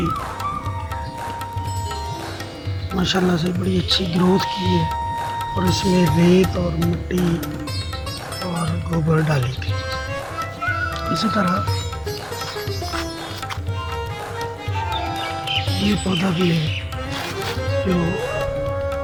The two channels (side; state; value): both; identical; correlation 1.00